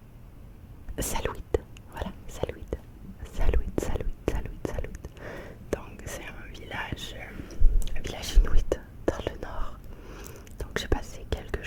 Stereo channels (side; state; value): both; identical; correlation 1.00